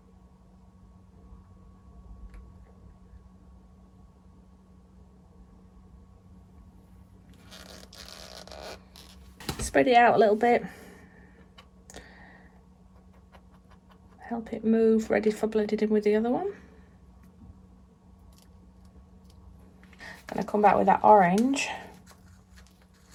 Spread it out a little bit. Help it move, ready for blending in with the other one. Gonna come back with that orange.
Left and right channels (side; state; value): both; identical; correlation 1.00